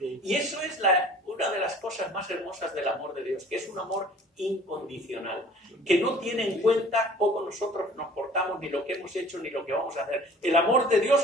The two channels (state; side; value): normal; both; correlation 0.49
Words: eso es una de las cosas más hermosas del amor de Dios, que es un amor incondicional, que no tiene en cuenta cómo nosotros nos portamos, ni lo que hemos hecho, ni lo que vamos a hacer. El amor de